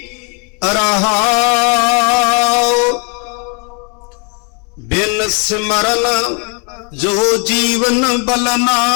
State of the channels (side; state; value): right; quieter; 35.9 dB